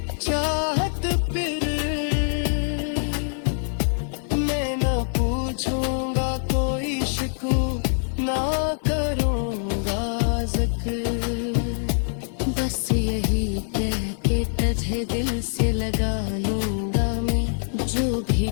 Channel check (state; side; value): silent; right; digital silence